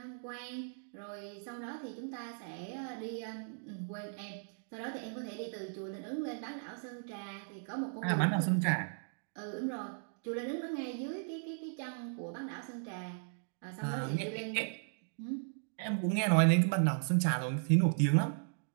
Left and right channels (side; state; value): left; silent; digital silence